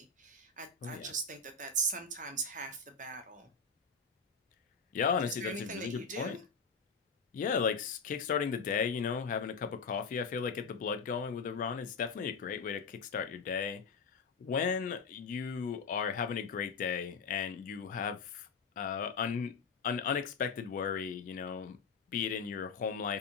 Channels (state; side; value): quieter; right; 4.8 dB